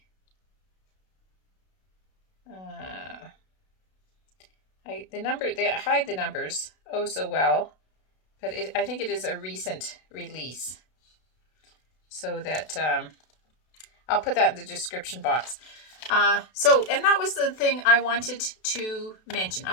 they hide the numbers oh so well, but I think it is a recent release. So that, I'll put that in the description box. And that was the thing I wanted to mention.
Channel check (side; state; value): right; late; 32 ms